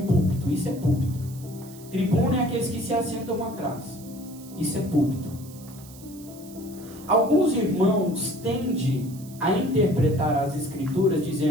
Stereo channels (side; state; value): right; noise; hiss, 20 dB below the sound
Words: púlpito. Isso é púlpito. Tribuna é aqueles que se assentam atrás. Isso é púlpito. Alguns irmãos tendem a interpretar as escrituras